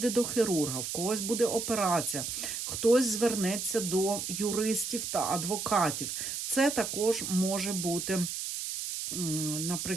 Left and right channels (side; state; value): right; noise; hiss, 4 dB below the sound